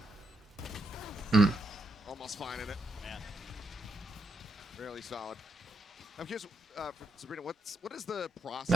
Almost finding it. Really solid. I'm curious, for Sabrina, what is the process?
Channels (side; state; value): both; normal; correlation 0.80